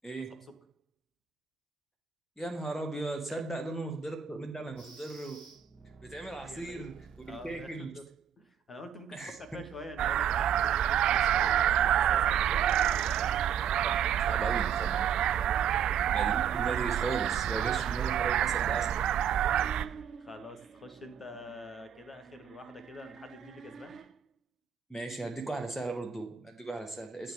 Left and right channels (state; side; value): quieter; left; 8.6 dB